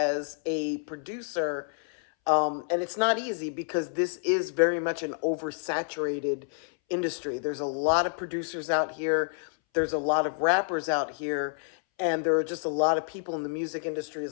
a producer, and it's not easy because this is very much an oversaturated industry. There's a lot of producers out here, there's a lot of rappers out here, and there are just a lot of people in the music industry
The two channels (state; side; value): silent; right; 59 dB below the other